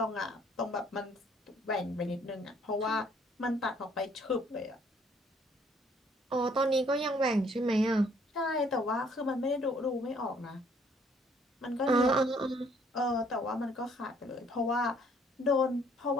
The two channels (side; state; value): both; normal; correlation 0.63